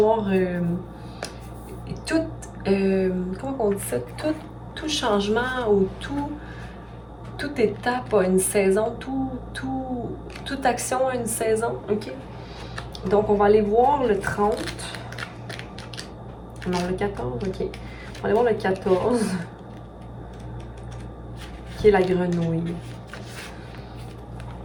comment on dit ça? Tout changement ou toute étape a une saison, toute action a une saison. OK? Donc, on va aller voir le 30. Non, le 14, OK. On va aller voir le 14. Qui est la grenouille.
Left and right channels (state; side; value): identical; both; correlation 1.00